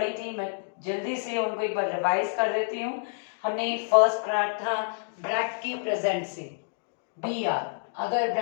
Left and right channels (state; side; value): silent; right; digital silence